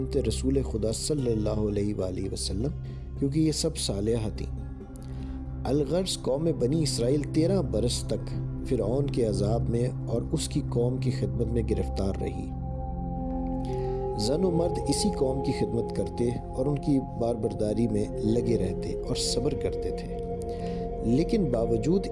رسول خدا صلی اللہ علیہ وآلہ وسلم، کیونکہ یہ سب صالحہ تھیں۔ الغرض قوم بنی اسرائیل 13 برس تک فرعون کے عذاب میں اور اس کی قوم کی خدمت میں گرفتار رہی۔ زن و مرد اسی قوم کی خدمت کرتے اور ان کی باربرداری میں لگے رہتے اور صبر کرتے تھے، لیکن باوجود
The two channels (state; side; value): identical; both; correlation 1.00